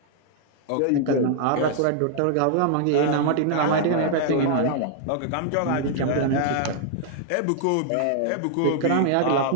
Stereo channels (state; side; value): different; both; correlation -0.01